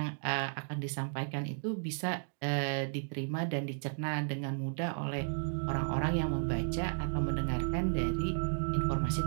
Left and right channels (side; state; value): left; silent; digital silence